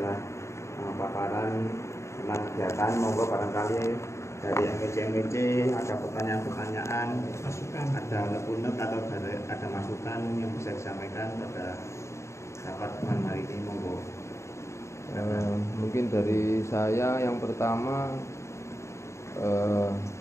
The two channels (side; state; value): right; late; 0.14 ms